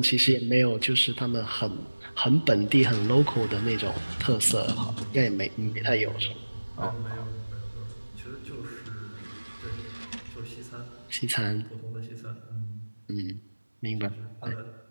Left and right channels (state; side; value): inverted; both; correlation -1.00